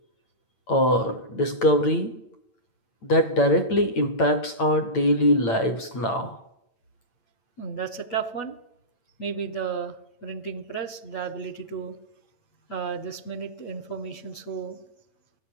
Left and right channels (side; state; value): right; late; 8.9 ms